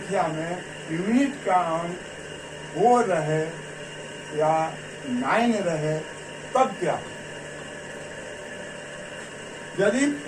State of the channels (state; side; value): identical; both; correlation 1.00